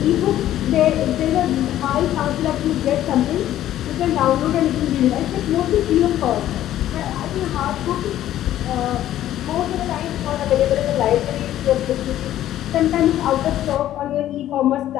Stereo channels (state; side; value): quieter; right; 12.7 dB